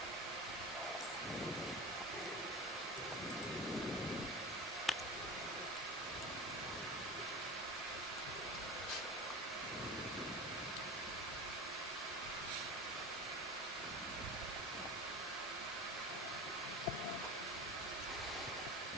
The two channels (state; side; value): normal; both; correlation 0.31